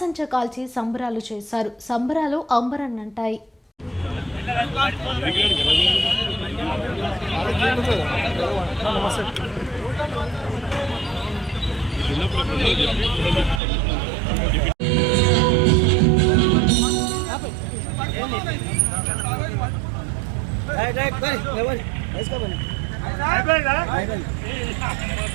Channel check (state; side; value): drops out; left; at 13.6 s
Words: కాల్చి సంబరాలు చేశారు. సంబరాలు అంబరన్నంటాయి.